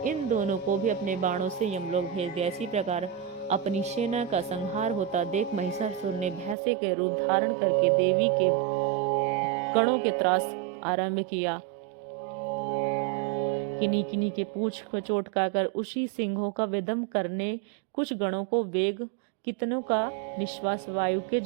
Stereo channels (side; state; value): left; drops out; at 6.6 s